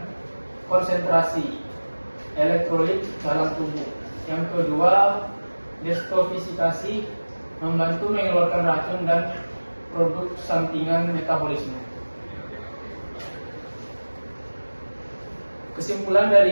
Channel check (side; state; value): both; inverted; correlation -1.00